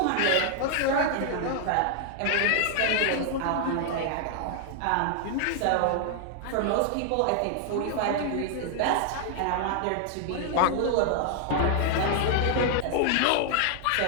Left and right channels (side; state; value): both; different; correlation 0.00